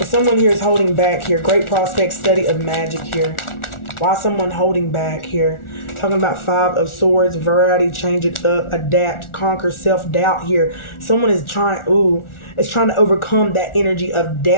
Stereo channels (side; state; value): right; late; 1.4 ms